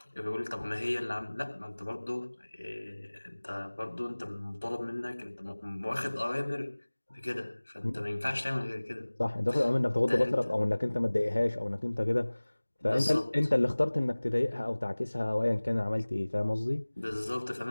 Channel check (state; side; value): inverted; both; correlation -1.00